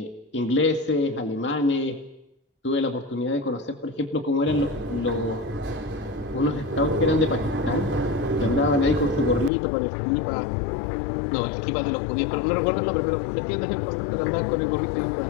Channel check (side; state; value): right; drops out; at 9.5 s